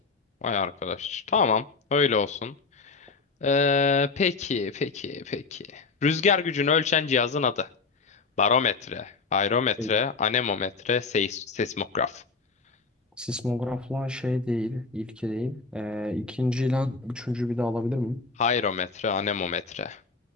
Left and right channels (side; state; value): right; quieter; 4.4 dB